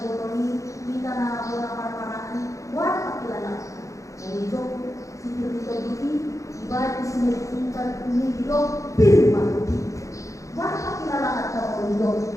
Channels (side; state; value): right; late; 0.15 ms